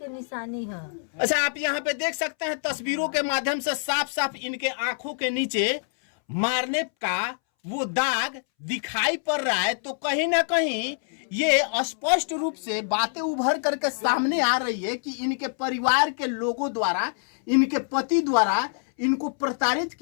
निशानी है। अच्छा आप यहाँ पे देख सकते हैं तस्वीरों के माध्यम से साफ साफ इनके आंखों के नीचे मारने का वो दाग दिखाई पड़ रहा है, तो कहीं ना कहीं ये स्पष्ट रूप से बातें उभर करके सामने आ रही है कि इनके परिवार के लोगों द्वारा, इनके पति द्वारा इनको प्रताड़ित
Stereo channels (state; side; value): silent; right; 61 dB below the other